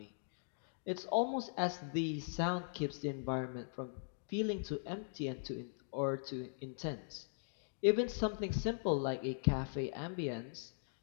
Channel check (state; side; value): silent; right; digital silence